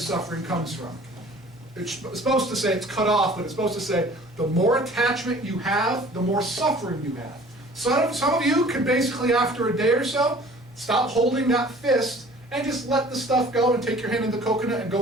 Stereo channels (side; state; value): both; normal; correlation 0.49